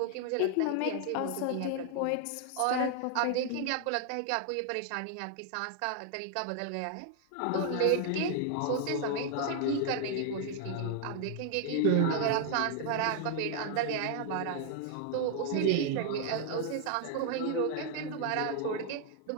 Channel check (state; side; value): different; both; correlation 0.00